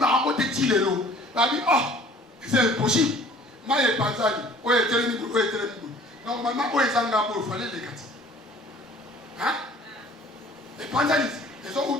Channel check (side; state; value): both; normal; correlation 0.51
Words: te tilelo. Babi oh, c'est impossible. Maye Panzani, oye telemi, oye telemi. Normalement, oye Zanga il fallait les gâter. Hein? Les Panzani, ils ont où